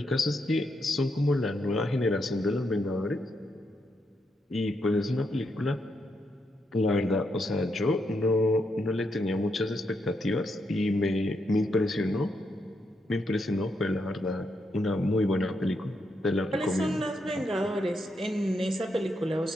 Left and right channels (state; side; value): normal; both; correlation 0.81